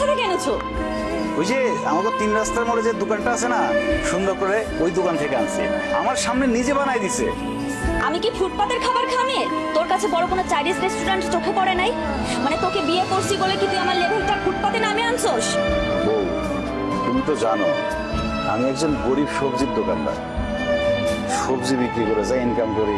থেকে এনেছো? ওই যে আমাদের 3 রাস্তার মোড়ে যে দোকানটা আছে না, সুন্দর করে ওই দোকান থেকে আনছি, আমার সামনে নিজে বানাই দিছে। আমি কি ফুটপাতের খাবার খামে? তোর কাছে বড় কোনো চাইনিজ রেস্টুরেন্ট চোখে পড়ে নাই? মানে তোকে বিয়ে করছি বলে কি তুই আমার লেভেলটা ফুটপাতে নামে আনছোস? বউ, তুমি তো জানো আমি একজন গরিব সবজির দোকানদার, সবজি বিক্রি করে যা ইনকাম করি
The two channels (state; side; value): identical; both; correlation 1.00